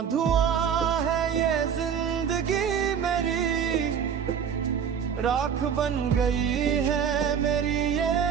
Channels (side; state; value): left; quieter; 7.6 dB